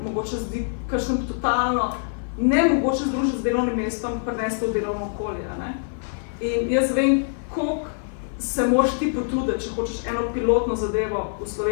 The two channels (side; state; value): right; silent; 55 dB below the other